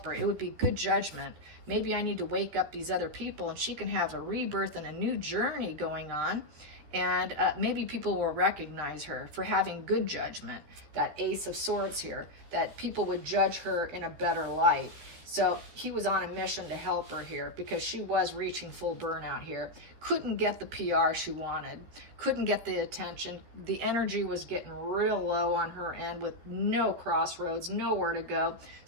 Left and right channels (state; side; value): late; left; 13 ms